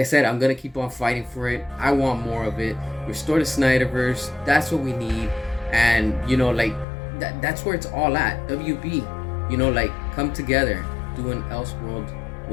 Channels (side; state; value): right; drops out; at 6.9 s